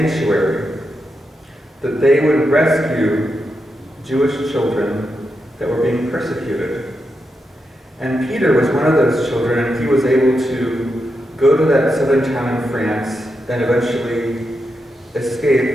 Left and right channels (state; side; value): normal; both; correlation 0.86